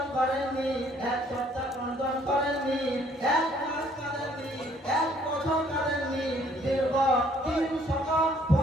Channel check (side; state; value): both; normal; correlation 0.62